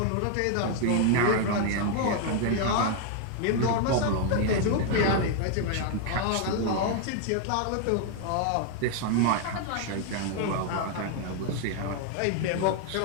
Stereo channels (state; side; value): different; both; correlation 0.00